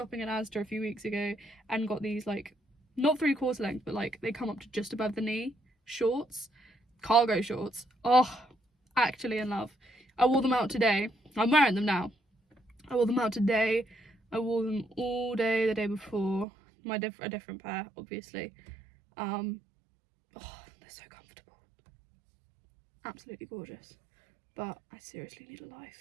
in Asda a few weeks ago and got these, like, not 3/4 length, but like they come up to just above the knee shorts, cargo shorts. Oh, actually in love. I wore them out today. I'm wearing them now. I wore them out today. I wore them all day the day before. A different pair, obviously. Oh, they're so comfortable. Absolutely gorgeous. But I seriously need a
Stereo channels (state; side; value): drops out; left; at 16.4 s